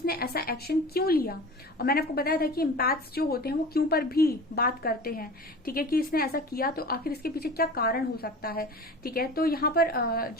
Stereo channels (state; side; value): normal; both; correlation 0.36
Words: ऐसा एक्शन क्यों लिया। और मैंने आपको बताया था कि एम्पैथ्स जो होते हैं वो क्यों पर भी बात करते हैं। ठीक है, कि इसने ऐसा किया तो आखिर इसके पीछे क्या कारण हो सकता है। ठीक है, तो यहाँ पर